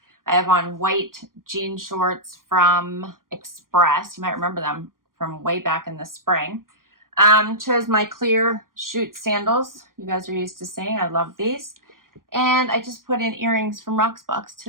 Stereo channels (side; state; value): left; late; 0.91 ms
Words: I have on white jean shorts from Express. You might remember them from way back in the spring. Chose my clear chute sandals. You guys are used to seeing. I love these. And I just put in earrings from Rocksbox